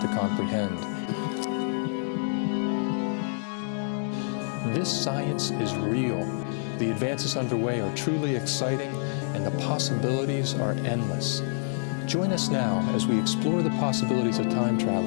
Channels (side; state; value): right; silent; digital silence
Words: comprehend. This science is real. The advances underway are truly exciting and the possibilities are endless. Join us now as we explore the possibilities of time